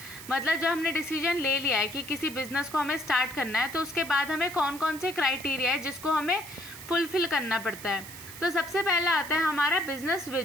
मतलब जब हमने डिसीजन ले लिया है कि किसी बिजनेस को हमें स्टार्ट करना है तो उसके बाद हमें कौन कौन से क्राइटेरिया है जिसको हमें फुलफिल करना पड़ता है। तो सबसे पहला आता है हमारा बिजनेस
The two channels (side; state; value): right; noise; hiss, 14 dB below the sound